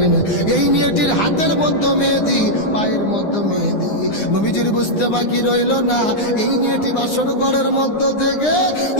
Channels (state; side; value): late; right; 9.8 ms